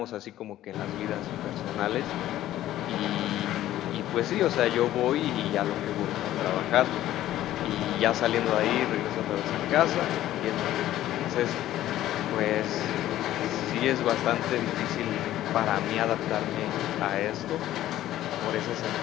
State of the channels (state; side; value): quieter; right; 13.6 dB